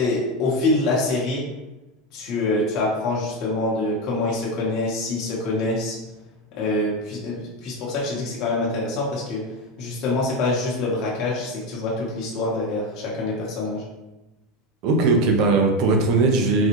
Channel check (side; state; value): both; normal; correlation 0.12